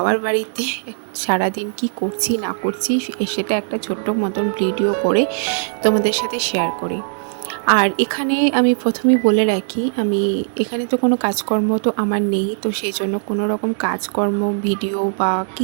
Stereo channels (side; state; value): left; silent; 66 dB below the other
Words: বাড়িতে সারাদিন কি করছি না করছি সেটা একটা ছোট্ট মতন ভিডিও করে তোমাদের সাথে শেয়ার করি। আর এখানে আমি প্রথমেই বলে রাখি, আমি এখানে তো কোনো কাজকর্ম তো আমার নেই, তো সেই জন্য কোনো রকম কাজকর্ম ভিডিও বা